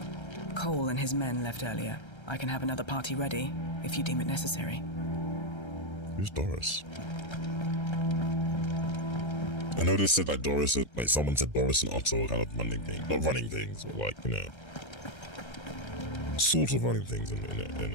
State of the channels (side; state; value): right; late; 1.3 ms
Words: Cole and his men left earlier. I can have another party ready, if you deem it necessary. Who's Doris? I know they said like Doris, like someone said Doris and Otto are kind of running things, not running things, but like, you know, sort of running things in